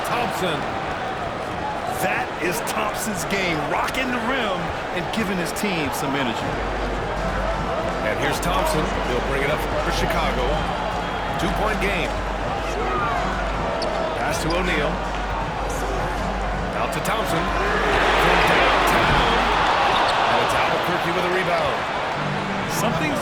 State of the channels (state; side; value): identical; both; correlation 1.00